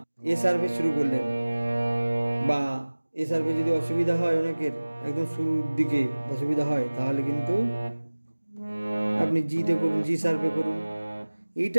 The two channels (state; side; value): inverted; both; correlation -1.00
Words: এ শার্পে শুরু করলেন, বা এ শার্পে যদি অসুবিধা হয়, অনেকের একদম শুরুর দিকে অসুবিধা হয়, তাহলে কিন্তু আপনি জিতে করুন, জি শার্পে করুন।